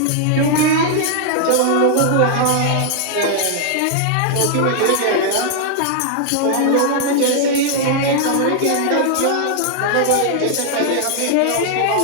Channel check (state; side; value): different; both; correlation 0.00